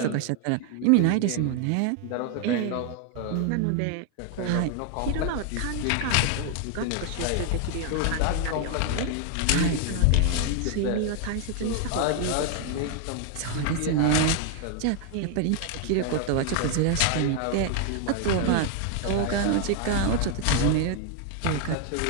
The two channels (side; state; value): both; different; correlation 0.00